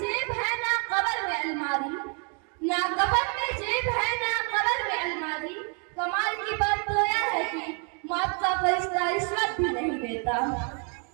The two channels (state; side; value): quieter; left; 38.4 dB